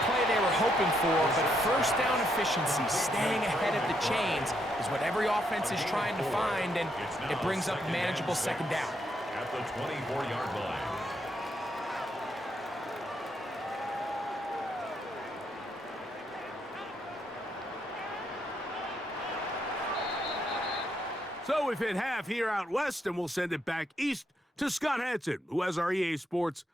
play they were hoping for, but first down efficiency, staying ahead of the chains, is what every offense is trying to find, and it brings up a manageable 2nd down. At the 24-yard line. So we've hit half here out west, and we'll send it back east to Scott Hansen, who has our EA Sports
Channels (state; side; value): normal; both; correlation 0.76